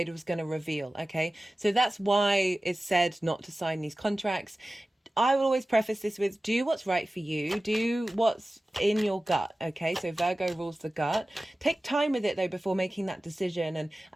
was going to reveal. Okay, so that's why it's said not to sign these contracts. I will always preface this with, do what's right for you, do what's in your gut. Okay, so Virgo rules the gut. Take time with it though before making that decision,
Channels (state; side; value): normal; both; correlation 0.96